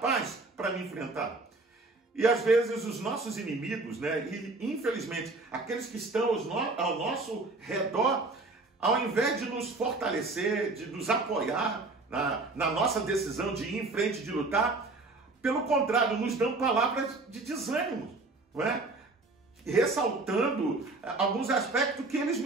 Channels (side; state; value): left; quieter; 3.4 dB